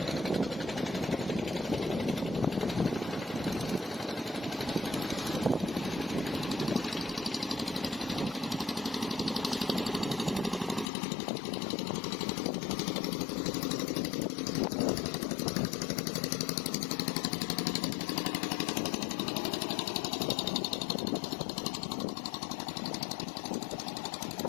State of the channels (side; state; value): right; drops out; at 10.9 s